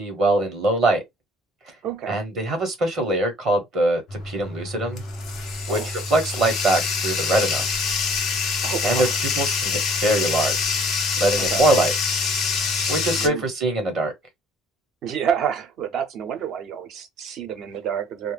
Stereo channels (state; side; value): normal; both; correlation 0.56